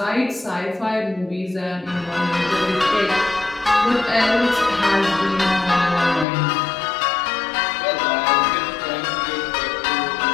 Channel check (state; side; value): drops out; right; at 6.2 s